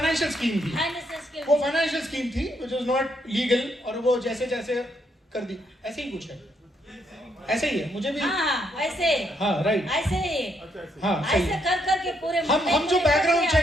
स्कीम थी, वो फाइनेंशियल स्कीम थी which was not legal, और वो जैसे कर दी, ऐसे ही कुछ है, ऐसे ही है। मुझे भी हाँ, ऐसे, हाँ राइट, ऐसे ही, हाँ ऐसे कर के पूरे हम जो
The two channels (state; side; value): normal; both; correlation 0.75